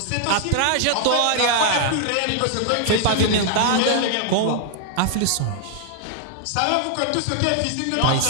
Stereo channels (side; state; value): both; different; correlation 0.00